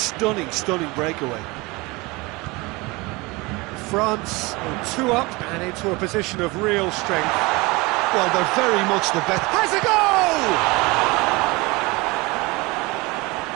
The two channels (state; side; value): quieter; left; 24.1 dB